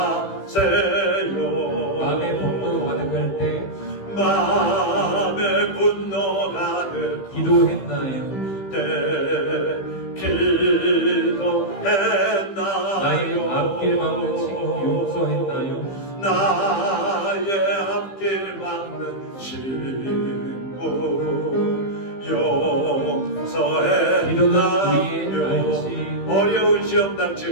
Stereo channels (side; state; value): right; late; 15 ms